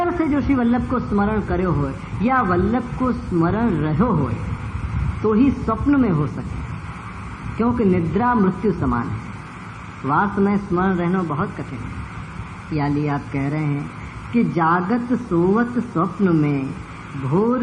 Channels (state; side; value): identical; both; correlation 1.00